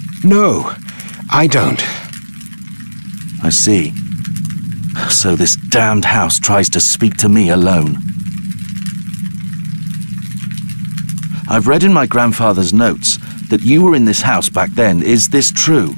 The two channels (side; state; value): both; inverted; correlation -1.00